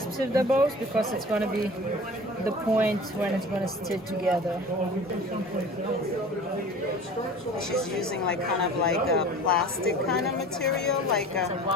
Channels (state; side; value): normal; both; correlation 0.41